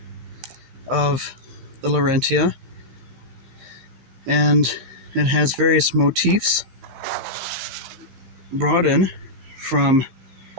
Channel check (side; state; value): left; late; 15 ms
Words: of the Laurentia, and it has various motifs brought in from,